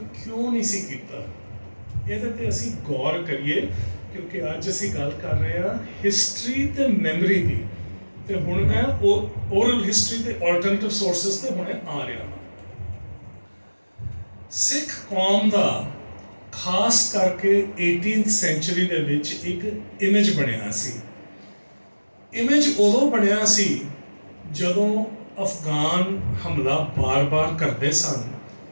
ਕਿਉਂ ਨਹੀਂ ਸੀ ਕੀਤਾ, ਇਹਦੇ ਤੇ ਅਸੀਂ ਗੌਰ ਕਰੀਏ, ਕਿਉਂਕਿ ਅੱਜ ਅਸੀਂ ਗੱਲ ਕਰ ਰਹੇ ਹਾਂ ਹਿਸਟਰੀ ਤੇ ਮੈਮਰੀ ਦੀ, ਤੇ ਹੁਣ ਮੈਂ ਓਰਲ ਹਿਸਟਰੀ ਤੇ ਆਲਟਰਨੇਟਿਵ ਸੋਰਸਸ ਤੇ ਹੁਣੇ ਆ ਰਿਹਾ ਹਾਂ। ਸਿੱਖ ਕੌਮ ਦਾ ਖਾਸ ਕਰਕੇ 18th ਸੈਂਚੁਰੀ ਦੇ ਵਿੱਚ ਇੱਕ ਇਮੇਜ ਬਣਿਆ ਸੀ। ਇਮੇਜ ਉਦੋਂ ਬਣਿਆ ਸੀ ਜਦੋਂ ਅਫਗਾਨ ਹਮਲਾ ਬਾਰ-ਬਾਰ ਕਰਦੇ ਸਨ,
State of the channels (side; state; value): both; inverted; correlation -1.00